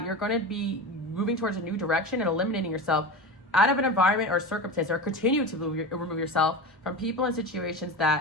you're going to be moving towards a new direction and eliminating yourself out of an environment or circumstance, or continue to remove yourself from people and situations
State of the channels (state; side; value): normal; both; correlation 0.26